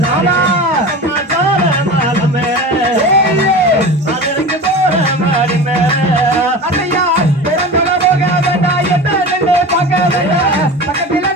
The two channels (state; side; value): normal; both; correlation 0.32